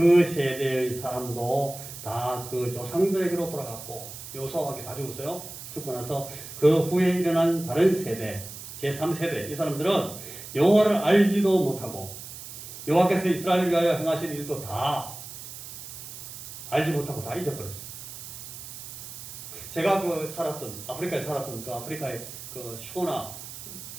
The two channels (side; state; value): right; noise; hiss, 12 dB below the sound